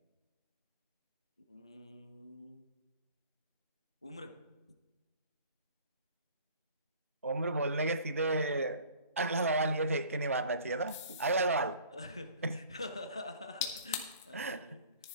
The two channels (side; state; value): both; inverted; correlation -0.48